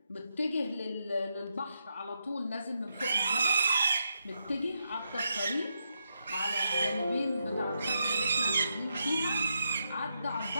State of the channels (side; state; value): both; inverted; correlation -0.83